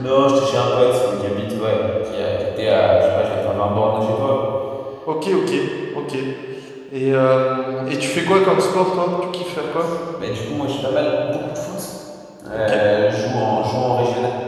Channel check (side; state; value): both; identical; correlation 1.00